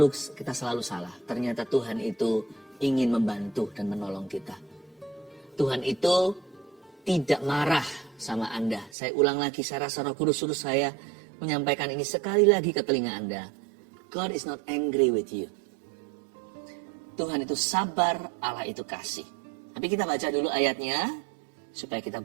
salah. Ternyata Tuhan itu ingin membantu dan menolong kita. Tuhan itu tidak marah sama Anda. Saya ulang lagi, saya rasa Roh Kudus suruh saya menyampaikan ini sekali lagi ke telinga Anda. God is not angry with you. Tuhan itu sabar, Allah itu kasih. Tapi kita baca dulu ayatnya, supaya kita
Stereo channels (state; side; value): drops out; left; at 8.9 s